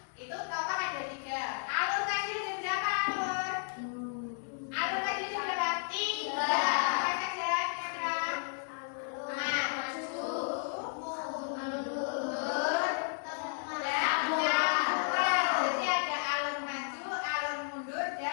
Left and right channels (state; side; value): silent; right; 56 dB below the other